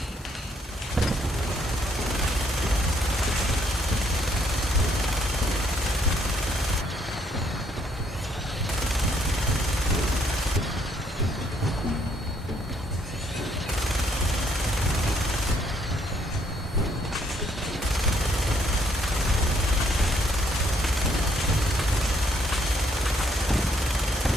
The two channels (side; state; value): both; normal; correlation 0.69